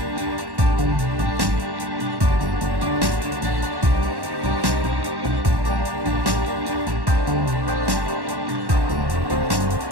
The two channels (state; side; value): late; left; 1.1 ms